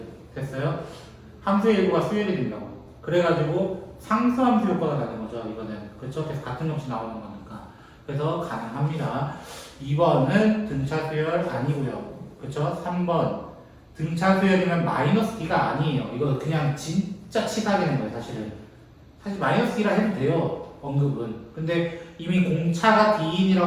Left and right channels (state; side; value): identical; both; correlation 1.00